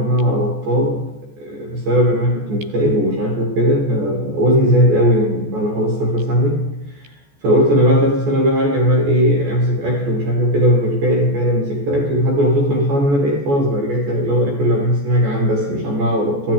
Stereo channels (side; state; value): left; late; 14 ms